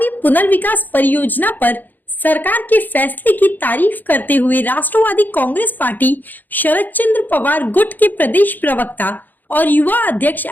पुनर्विकास परियोजना पर सरकार के फैसले की तारीफ करते हुए राष्ट्रवादी कांग्रेस पार्टी शरद चंद्र पवार गुट के प्रदेश प्रवक्ता और युवा अध्यक्ष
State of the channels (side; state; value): right; late; 0.086 ms